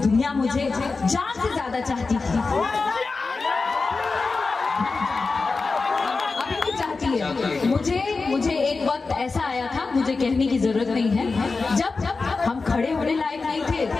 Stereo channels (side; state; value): right; quieter; 4.1 dB